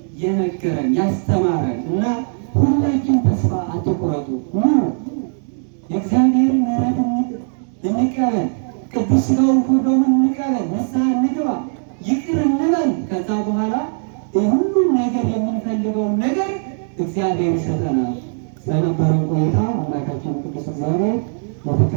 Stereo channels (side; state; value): left; silent; digital silence